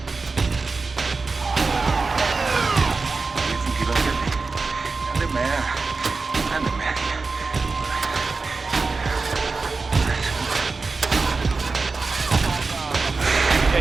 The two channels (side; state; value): left; quieter; 4.1 dB